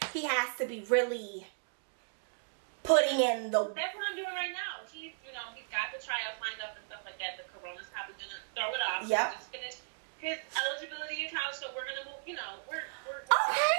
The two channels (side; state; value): left; silent; digital silence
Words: he has to be really putting in the. That's what I'm doing right now. He's got the tryouts lined up and stuff like that. The corona's probably gonna throw it off. Yep. Just finished his eligibility in college, so we're gonna move. We're